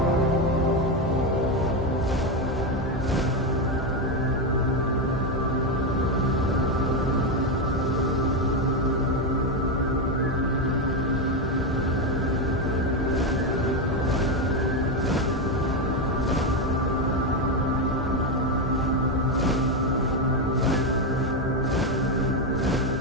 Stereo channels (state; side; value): normal; both; correlation 0.08